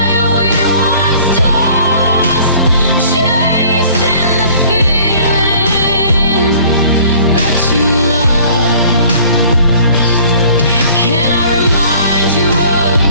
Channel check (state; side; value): inverted; both; correlation -0.53